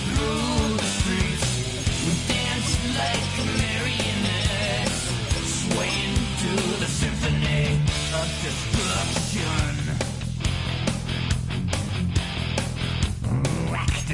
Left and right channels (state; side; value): identical; both; correlation 1.00